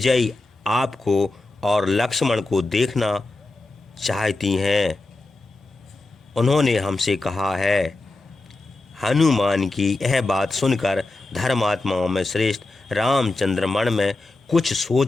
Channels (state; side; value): quieter; right; 3.0 dB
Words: आपको और लक्ष्मण को देखना चाहती हैं। उन्होंने हमसे कहा है। हनुमान की यह बात सुनकर धर्मात्माओं में श्रेष्ठ रामचंद्र मन में कुछ